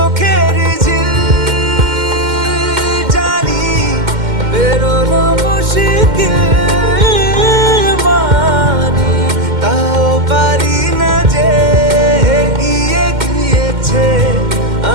ঝিল জানি বেরোনো মুশকিল মানি তাও পারি না যে এগিয়ে গিয়েছে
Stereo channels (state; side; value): late; left; 2.1 ms